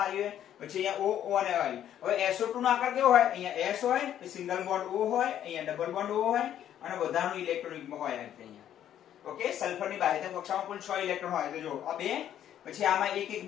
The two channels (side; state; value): right; quieter; 10.7 dB